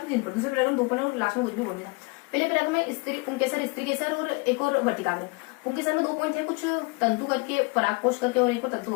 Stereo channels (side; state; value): right; quieter; 28.2 dB